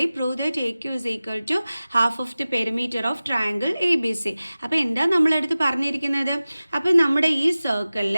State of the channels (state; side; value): inverted; both; correlation -0.97